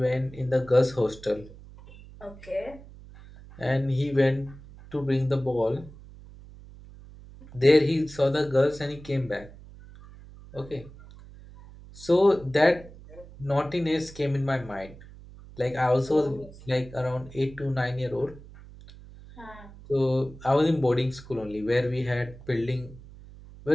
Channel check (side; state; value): right; noise; hum, 19 dB below the sound